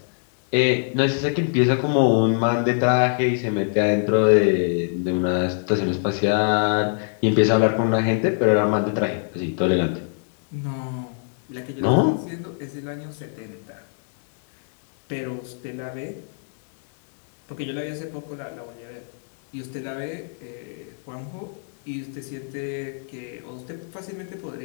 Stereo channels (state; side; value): silent; right; digital silence